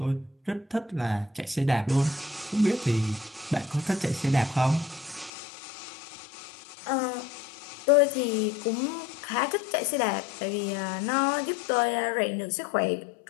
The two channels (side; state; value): right; drops out; at 5.3 s